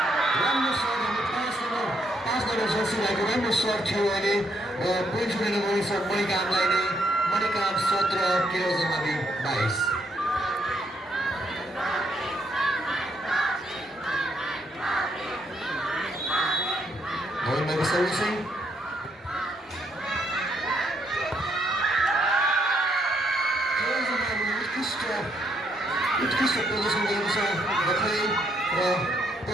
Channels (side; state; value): both; normal; correlation 0.74